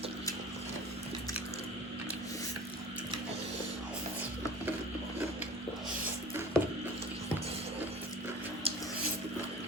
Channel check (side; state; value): both; normal; correlation 0.40